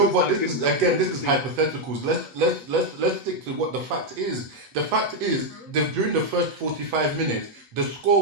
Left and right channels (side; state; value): left; late; 8.1 ms